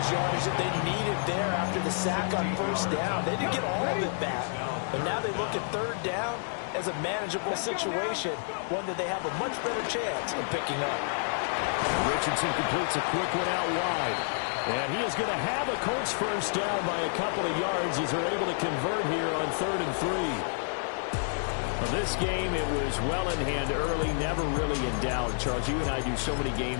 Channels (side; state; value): right; silent; digital silence